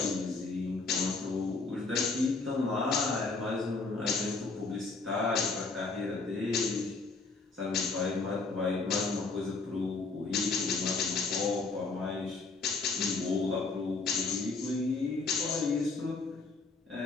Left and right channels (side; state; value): right; quieter; 3.9 dB